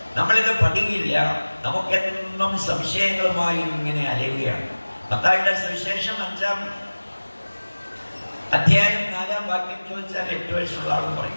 നമ്മളിത് പഠിക്കില്ല. നമുക്കെന്നും സംശയങ്ങളുമായി ഇങ്ങനെ അലയുകയാണ്. മത്തായിയുടെ സുവിശേഷം 5-ാം അധ്യായം 4-ാം വാക്യം ചോദിച്ചാൽ 8 വയസ്സുള്ള ആളും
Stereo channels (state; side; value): inverted; both; correlation -1.00